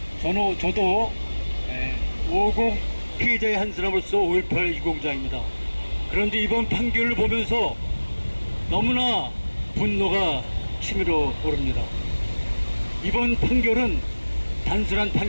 저도 50 피해자의 한 사람으로서 5.18 유공자입니다. 그런데 이번 판결을 보면서 너무나 분노가 치밀어 오릅니다. 이번 판결은 단순한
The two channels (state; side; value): inverted; both; correlation -1.00